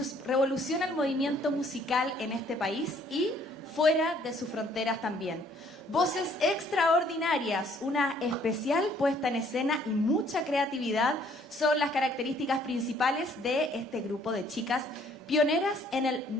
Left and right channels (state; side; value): normal; both; correlation 0.62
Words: el movimiento musical en este país y fuera de sus fronteras también. Voces extraordinarias, una especial puesta en escena y mucha creatividad son las características principales de este grupo de chicas pioneras en el